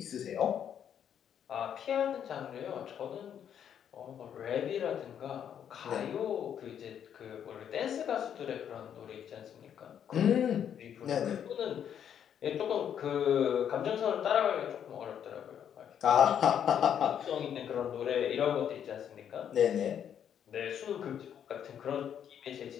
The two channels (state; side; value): quieter; right; 9.0 dB